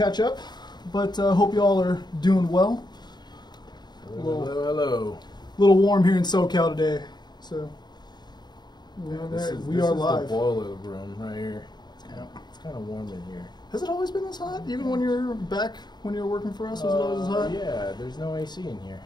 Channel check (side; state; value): right; late; 0.21 ms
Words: up, but hope you all are doing well. Hello. A little warm here in SoCal today, so This we are is live. the boiler room right here. It's kind of warm in here. Has it always been this hot? Even when you're back, when you were working for us, was it always this hot? Yeah, there's no AC in here.